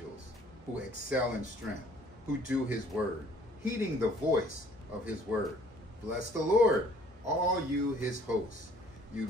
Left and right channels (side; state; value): both; normal; correlation 0.58